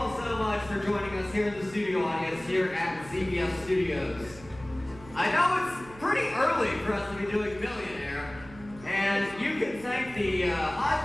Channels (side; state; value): right; noise; hum, 19 dB below the sound